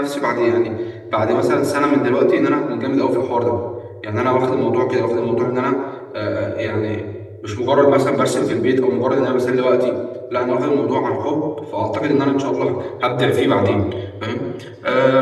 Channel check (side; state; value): both; identical; correlation 1.00